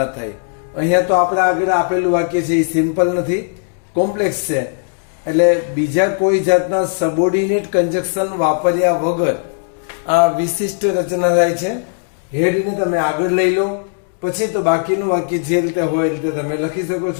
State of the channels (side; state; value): right; silent; digital silence